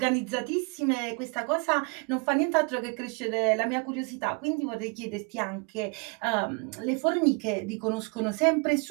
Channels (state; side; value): quieter; left; 32.3 dB